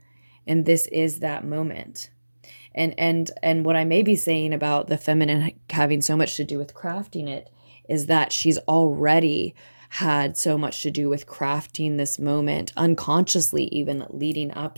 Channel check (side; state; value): both; inverted; correlation -1.00